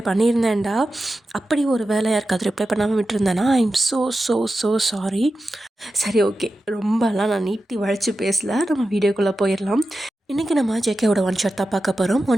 பண்ணியிருந்தேன்டா. அப்படி ஒரு வேலை யாருக்காவது ரிப்ளை பண்ணாமல் விட்டுருந்தேன்னா ஐ எம் ஸோ சாரி. சரி, ஓகே, ரொம்பலாம் நான் நீட்டி வளைச்சி பேசல. நம்ம வீடியோக்குள்ளே போயிடலாம். இன்றைக்கி நம்ம ஜேகேவோட ஒன் ஷாட் தான் பார்க்க போகிறோம்.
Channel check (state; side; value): normal; both; correlation 0.92